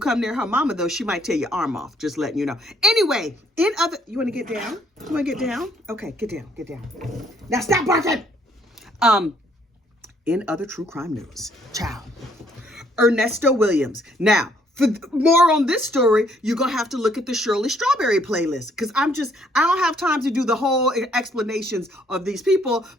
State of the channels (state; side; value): normal; both; correlation 0.66